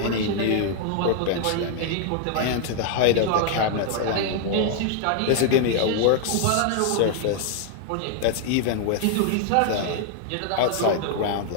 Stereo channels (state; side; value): different; both; correlation 0.00